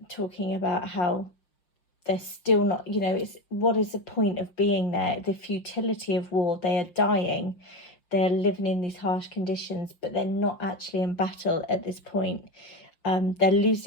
talking about how they're still not, you know, it's what is the point of being there? The futility of war. They are dying. They're living in these harsh conditions, but they're not actually in battle at this point. They're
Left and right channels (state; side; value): late; right; 5.7 ms